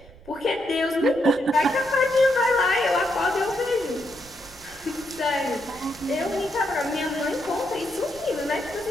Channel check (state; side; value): noise; right; rumble, 23 dB below the sound